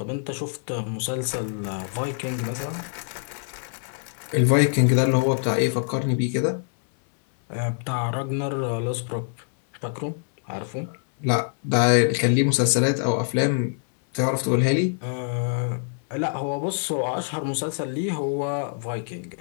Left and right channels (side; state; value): right; silent; 62 dB below the other